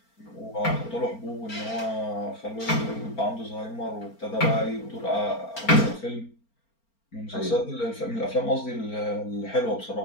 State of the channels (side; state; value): right; late; 4.4 ms